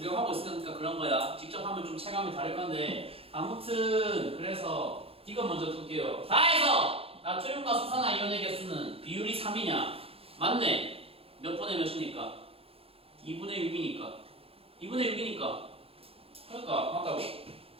있으니까 그런 거야. 직접 하면 좀 체감이 다를 건데 아무튼 그래서 이거 먼저 둘게요. 다 해서 나트륨과 수산화 이온의 개수는 비율이 3이냐? 맞네. 몇 분의 몇이니까? 2분의 6이니까. 2분의 6이니까. 그러니까 맞다고.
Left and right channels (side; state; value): left; late; 0.28 ms